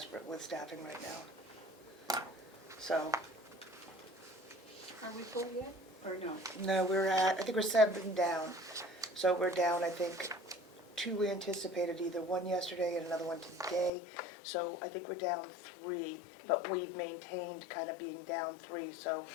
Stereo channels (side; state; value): right; drops out; at 13.9 s